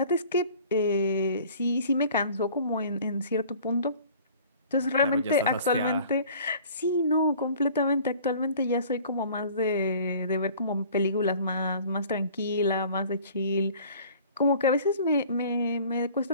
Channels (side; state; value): both; inverted; correlation -0.49